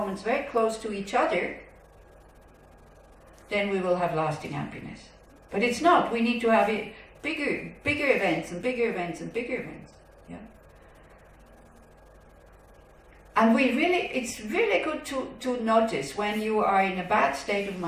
very close to each other, then we will have lasting happiness. But it's not. We need to have it bigger events and bigger events and bigger events. Yeah. And it's really good to notice when you are in a bad state of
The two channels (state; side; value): identical; both; correlation 1.00